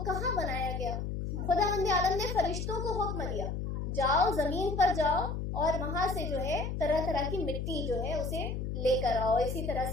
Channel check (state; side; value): noise; left; hum, 3 dB below the sound